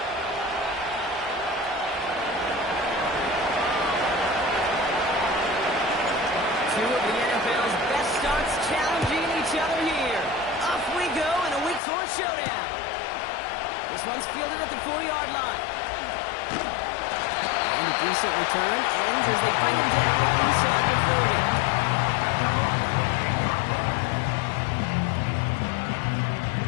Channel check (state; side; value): drops out; right; at 11.8 s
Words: Two of the NFL's best starts challenging each other here. Off we go in a Week 4 showdown. This one's fielded at the 4-yard line. And a decent return ends as they bring him down inside the 30.